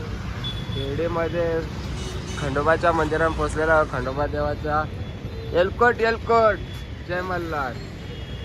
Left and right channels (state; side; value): identical; both; correlation 1.00